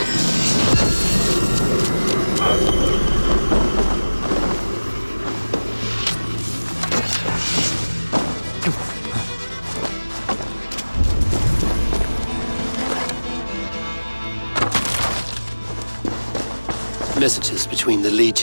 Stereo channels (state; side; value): inverted; both; correlation -1.00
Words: Messages between the